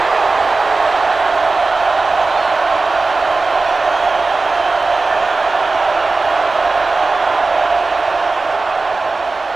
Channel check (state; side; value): quieter; left; 3.7 dB